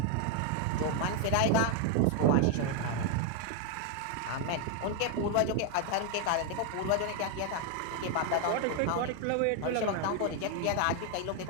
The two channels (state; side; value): different; both; correlation 0.01